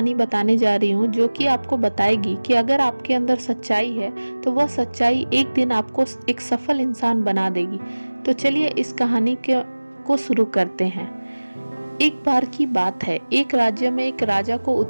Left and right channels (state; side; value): inverted; both; correlation -1.00